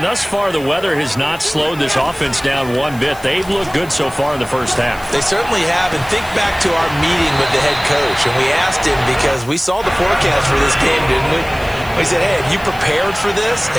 thus far, the weather has not slowed this offense down one bit. They've looked good so far in the first half. They certainly have. And think back to our meeting with the head coach. And we asked him because we saw the forecast for this game, didn't we? We said, hey, have you prepared for this?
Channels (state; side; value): noise; left; hiss, 20 dB below the sound